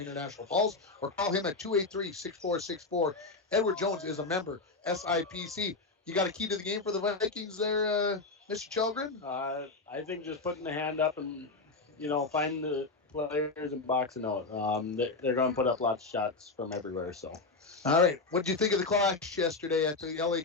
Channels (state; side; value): quieter; right; 3.8 dB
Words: Falls, or call him at 283-6464. Edward Jones is a member, SIPC. You got a key to the game for the Vikings there, Mr. Chelgren? I think just putting the hand up and, find the players and boxing out. They're going to put up lots of shots from everywhere. So, all right. What did you think of the clash yesterday at the LA